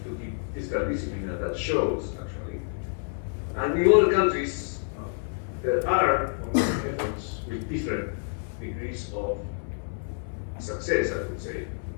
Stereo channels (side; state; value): right; silent; 59 dB below the other